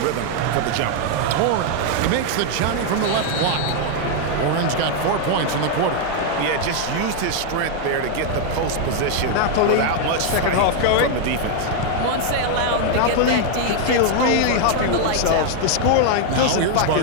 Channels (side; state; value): both; different; correlation 0.00